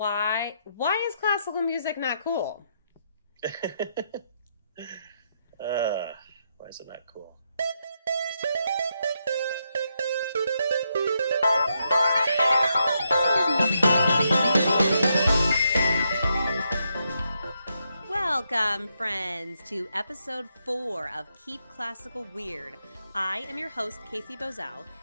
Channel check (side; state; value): both; inverted; correlation -0.80